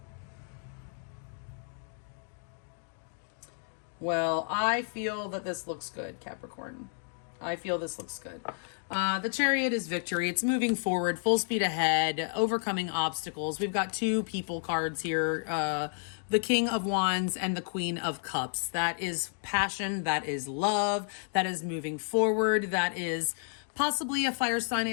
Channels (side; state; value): right; silent; 57 dB below the other